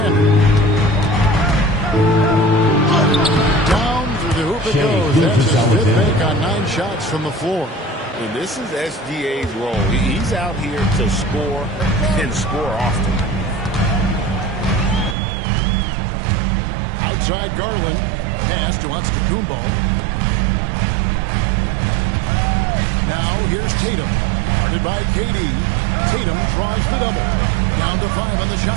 Down through the hoop it goes. That's his 5th make on 9 shots from the floor. And this is SGA's role. He's out here to score and score often. Outside Garland. Pass to Antetokounmpo. Now here's Tatum. Guarded by KD. Tatum draws the double. Down to 5 on the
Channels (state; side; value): drops out; left; at 15.2 s